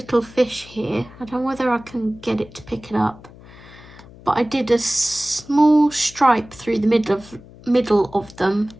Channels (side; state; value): left; noise; hum, 21 dB below the sound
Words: fish here, I don't know whether I can get it to pick it up, but I did a small stripe through the middle of them